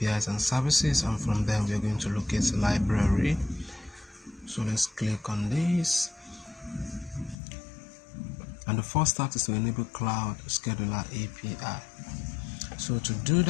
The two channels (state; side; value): drops out; right; at 7.4 s